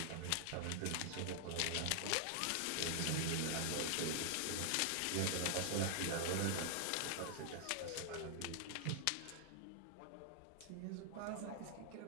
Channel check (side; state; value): both; different; correlation 0.00